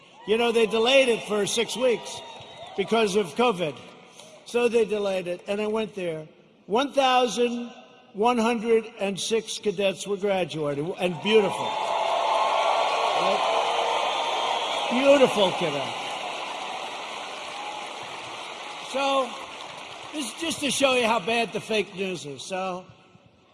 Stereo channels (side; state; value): both; identical; correlation 1.00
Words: You know, they delayed it for 6 weeks because of COVID. So they delayed it, and I went there. 1,106 cadets were graduating, and beautiful. Right? Beautiful cadets. So this is just to show you how bad the fake news is. So